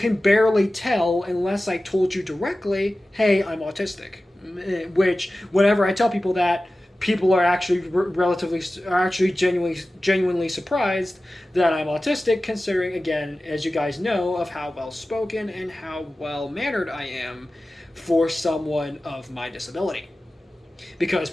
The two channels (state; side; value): normal; both; correlation 0.95